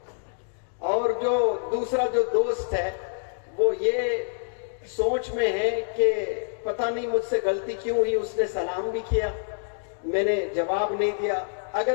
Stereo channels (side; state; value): right; silent; digital silence